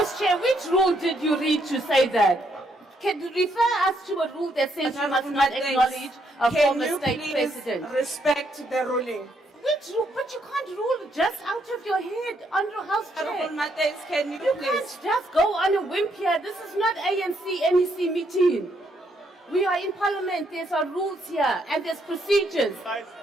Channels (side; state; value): both; normal; correlation 0.74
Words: Chair, which rule did you read to say that? Can you refer us to a rule that says you must Honorable not members, acknowledge a can former you state please president? respect the ruling? Which rule? But you can't rule just out of your head under House Honorable Chair. Matthias, can you You please? can't just go on a whim here. This is not ANC NEC meeting. We are in Parliament. There's our rules here and there's procedures.